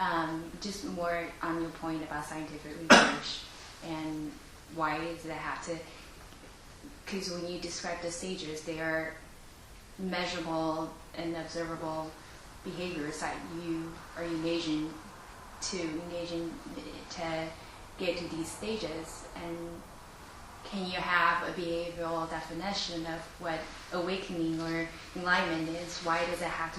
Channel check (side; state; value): both; identical; correlation 1.00